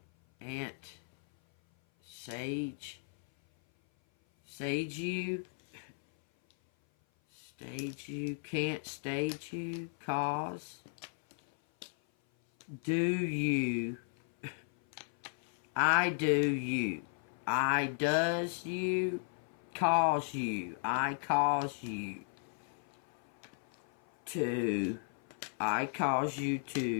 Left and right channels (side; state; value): right; silent; 54 dB below the other